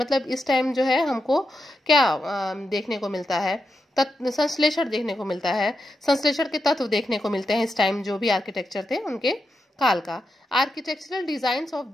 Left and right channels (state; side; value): normal; both; correlation 0.87